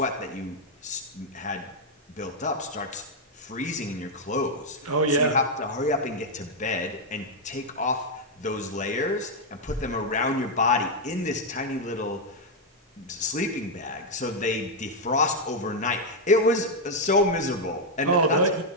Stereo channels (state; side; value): normal; both; correlation 0.00